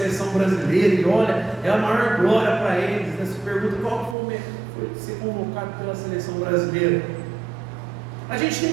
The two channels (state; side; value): drops out; left; at 4.2 s